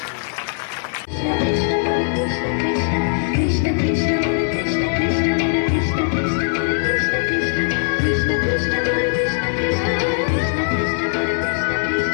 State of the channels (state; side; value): silent; right; 58 dB below the other